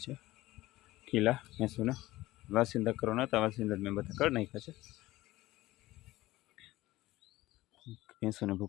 છે ખીલા ભેંસોને, વાસિંદા કરવાના હતા, વાસિંદા મેં બધા કરી નાખ્યા છે। ભેંસોને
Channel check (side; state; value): right; quieter; 17.6 dB